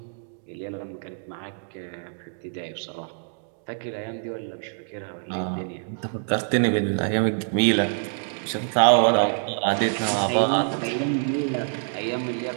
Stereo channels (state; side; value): silent; left; digital silence